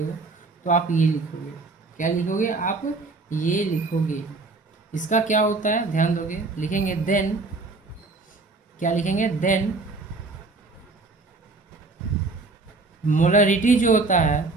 तो आप ये लिखोगे, क्या लिखोगे आप, ये लिखोगे। इसका क्या होता है ध्यान दोगे, लिखेंगे देन, क्या लिखेंगे देन मोलारिटी जो होता है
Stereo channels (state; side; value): quieter; left; 3.6 dB